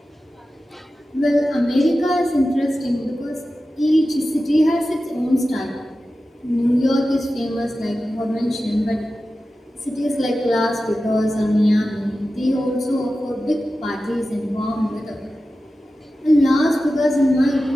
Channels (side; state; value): both; normal; correlation 0.94